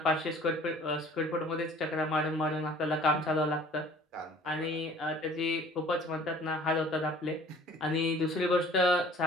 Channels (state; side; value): normal; both; correlation 0.50